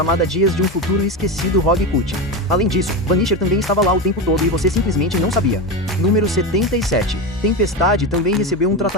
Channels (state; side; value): normal; both; correlation 0.18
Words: Dias de um Futuro Esquecido Rogue Cut. Além disso, Vanisher também estava lá o tempo todo e você simplesmente não sabia. Número 77. Tempestade também recebeu um